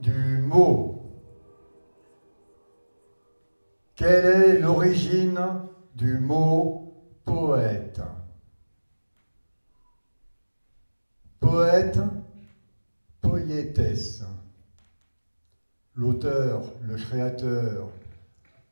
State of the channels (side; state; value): both; inverted; correlation -1.00